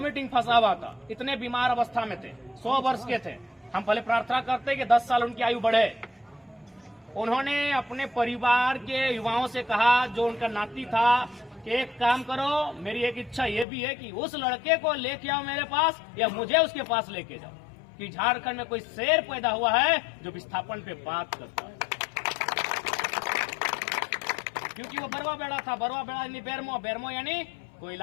फंसा हुआ था, इतने बीमार अवस्था में थे, 100 वर्ष के थे। हम पहले प्रार्थना करते कि 10 साल उनकी आयु बढ़े। उन्होंने अपने परिवार के युवाओं से कहा, जो उनका नाती था, कि एक काम करो, मेरी एक इच्छा ये भी है कि उस लड़के को लेके आओ मेरे पास, या मुझे उसके पास लेके जाओ, कि झारखंड में कोई शेर पैदा हुआ है जो विस्थापन पे बात करता है। क्योंकि वो बरवा बेड़ा था, बरवा बेड़ा यानी बेरमो, बेरमो यानी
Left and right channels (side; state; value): right; drops out; at 13.7 s